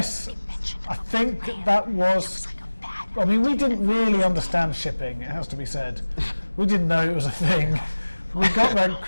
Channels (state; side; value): inverted; both; correlation -1.00